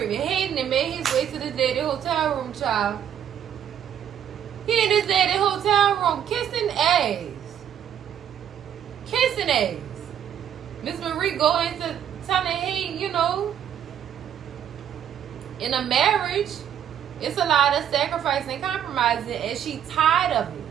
Hayden had made his way to the daddy hotel room, child. He in his daddy hotel room kissing ass. Kissing ass. Miss Marie go into telling Hayden, in a marriage, it's a lot of sacrifice and compromising, and she tired of it.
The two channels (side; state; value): left; quieter; 9.5 dB